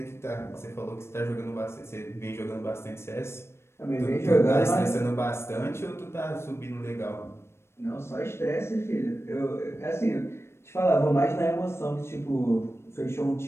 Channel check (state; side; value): late; right; 0.12 ms